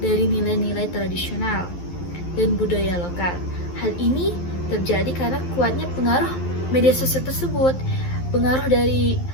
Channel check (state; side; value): late; right; 11 ms